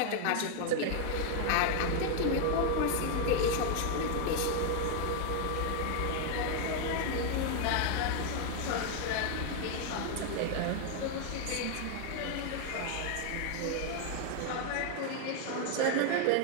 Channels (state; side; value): different; both; correlation 0.00